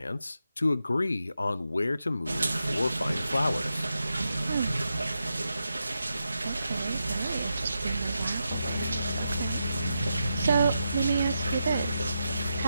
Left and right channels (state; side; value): inverted; both; correlation -0.86